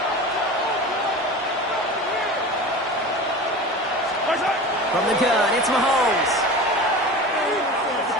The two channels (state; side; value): normal; both; correlation 0.33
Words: From the gun, it's Mahomes.